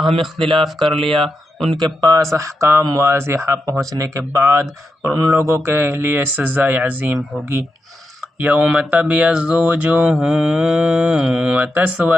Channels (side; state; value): both; normal; correlation 0.87